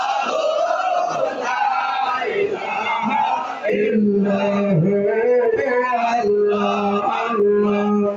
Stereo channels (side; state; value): both; identical; correlation 1.00